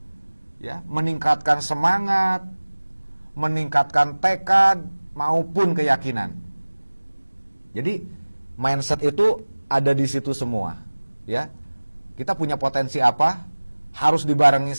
Ya, meningkatkan semangat, meningkatkan tekad maupun keyakinan. Jadi mindset itu ada di situ semua, ya. Kita punya potensi apa? Harus dibarengi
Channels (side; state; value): both; inverted; correlation -1.00